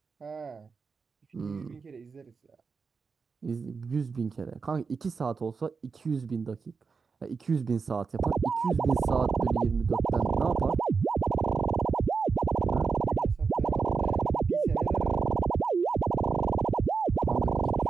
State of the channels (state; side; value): quieter; left; 5.1 dB